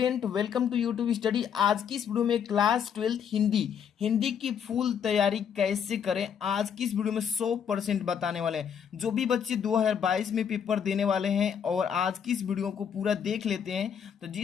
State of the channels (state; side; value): quieter; right; 7.9 dB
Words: welcome to YouTube study. आज की इस वीडियो में क्लास 12 हिंदी की फुल तैयारी कैसे करें, आज की इस वीडियो में 100% बताने वाले हैं। जो भी बच्चे 2022 में पेपर देने वाले हैं और आज की इस वीडियो को पूरा देख लेते हैं तो